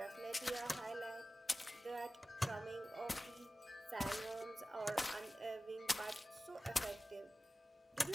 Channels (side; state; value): both; normal; correlation 0.96